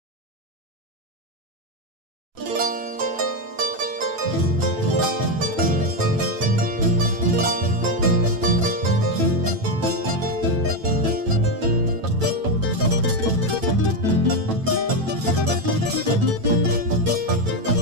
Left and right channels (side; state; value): left; late; 9.0 ms